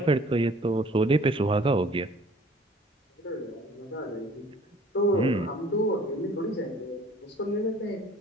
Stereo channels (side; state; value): both; normal; correlation 0.53